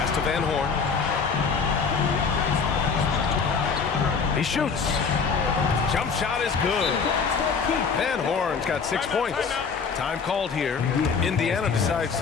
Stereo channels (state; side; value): quieter; right; 5.5 dB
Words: to Van Horn. He shoots. Jump shot is good. Van Horn's got 6 points. Time called here. Indiana decides